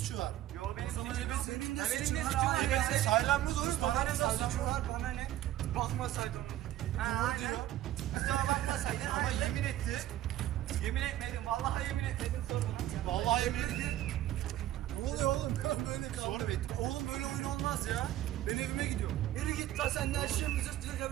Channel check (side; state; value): left; quieter; 13.5 dB